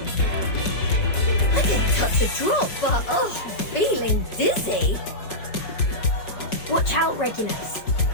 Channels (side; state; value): right; late; 5.6 ms